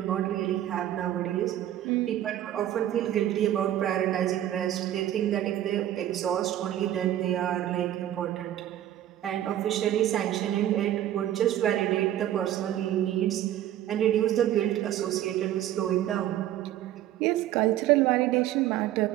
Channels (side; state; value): left; quieter; 12.4 dB